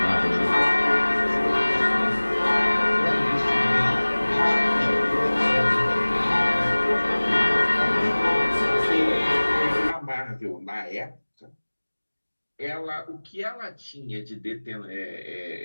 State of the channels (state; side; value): inverted; both; correlation -1.00